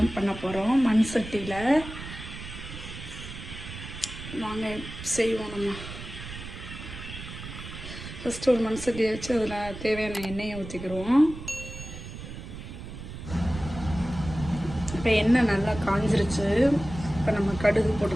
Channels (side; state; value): right; noise; rumble, 11 dB below the sound